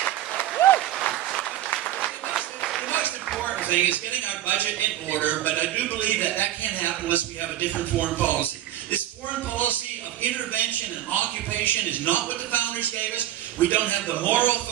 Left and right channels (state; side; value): quieter; left; 12.8 dB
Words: most important thing is getting our budget in order, but I do believe that that can't happen unless we have a different foreign policy. This foreign policy of intervention and occupation is not what the founders gave us. We don't have the moral